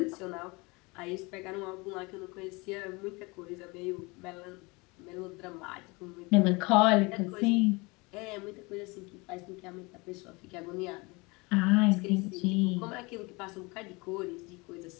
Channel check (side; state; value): right; quieter; 26.1 dB